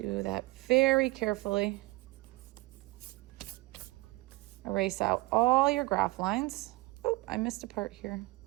that very carefully. Erase out all your graph lines. Oh, I missed a part here.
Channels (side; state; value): left; quieter; 21.7 dB